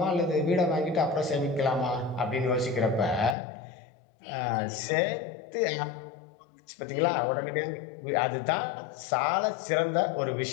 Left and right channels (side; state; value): right; drops out; at 3.4 s